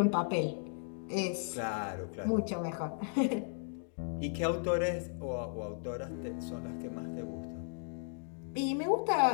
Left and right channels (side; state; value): right; silent; digital silence